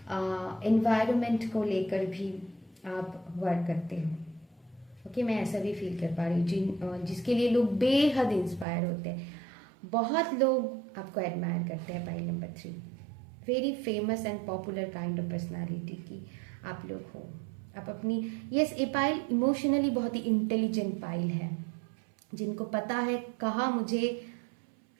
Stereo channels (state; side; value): drops out; left; at 8.7 s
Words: एनवायरनमेंट को लेकर भी आप वर्क करते हो। ओके, मैं ऐसा भी फील कर पा रही हूँ, जिसके लिए लोग बेहद इंस्पायर होते हैं। बहुत लोग आपको एडमायर करते हैं pile number 3। Very famous and popular kind of personality की आप लोग हो। आप अपनी यस, ये पाइल इमोशनली बहुत ही इंटेलिजेंट पाइल है, जिनको पता है कहाँ मुझे